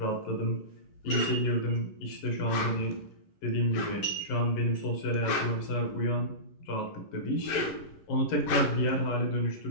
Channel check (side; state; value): right; late; 11 ms